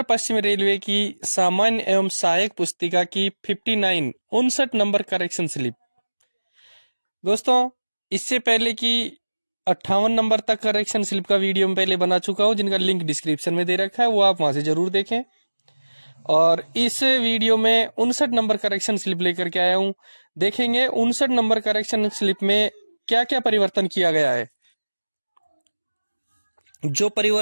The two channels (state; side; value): inverted; both; correlation -1.00